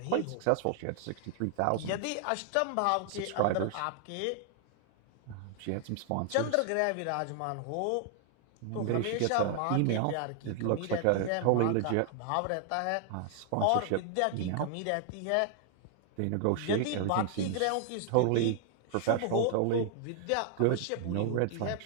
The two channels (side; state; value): both; different; correlation 0.00